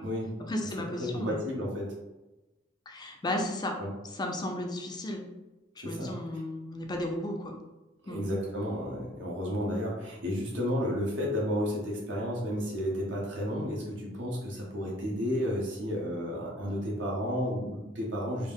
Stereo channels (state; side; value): normal; both; correlation 0.56